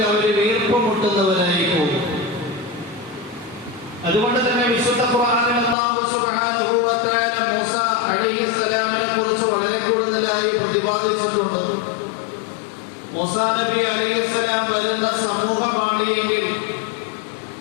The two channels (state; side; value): drops out; right; at 5.8 s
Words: അവർ വീർപ്പുമുട്ടുന്നവരായി പോകും. അതുകൊണ്ട് തന്നെ വിശുദ്ധ ഖുർആനിൽ അല്ലാഹു സുബ്ഹാനഹു വ തആല മൂസ അലൈഹിസ്സലാമിനെ കുറിച്ച് വളരെ കൂടുതലായി പ്രതിപാദിച്ചിട്ടുണ്ട്. മൂസ നബി അലൈഹിസ്സലാം വരുന്ന സമൂഹമാണ് എങ്കിൽ